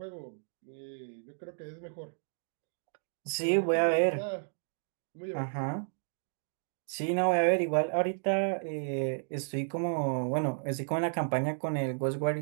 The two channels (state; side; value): silent; left; digital silence